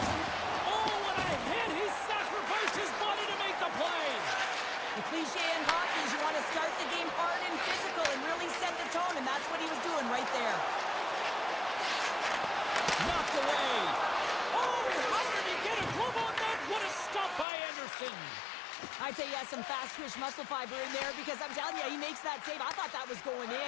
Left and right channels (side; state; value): right; drops out; at 17.4 s